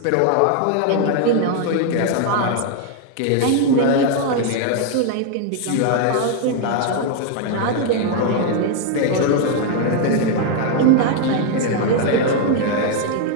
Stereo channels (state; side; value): different; both; correlation 0.00